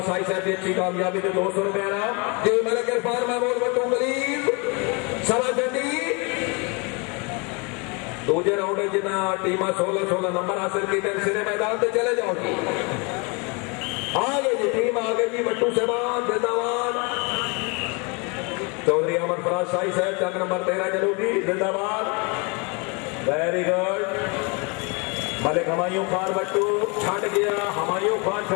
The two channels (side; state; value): right; quieter; 31.3 dB